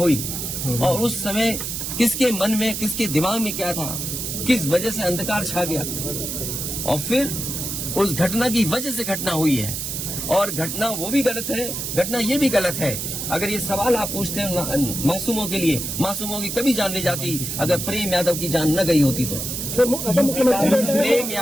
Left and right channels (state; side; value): noise; right; hiss, 4 dB below the sound